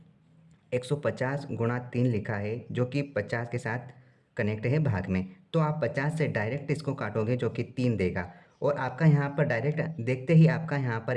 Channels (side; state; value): both; identical; correlation 1.00